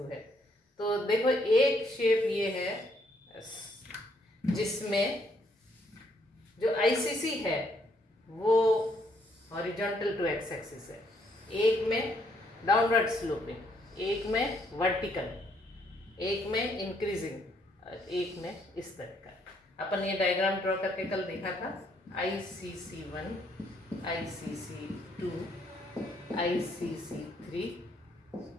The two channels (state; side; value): normal; both; correlation 0.70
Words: है। तो देखो, एक शेप ये है जिसमें जो आईसीसी है वो हॉरिजॉन्टल टू एक्स एक्सिस है, एक में डाउनवर्ड स्लोपिंग, एक में वर्टिकल, एक में इंक्रीजिंग, एक में इस तरह का। अपन ये डायग्राम ड्रॉ करके कल देखा था। ICC1, ICC2, ICC3,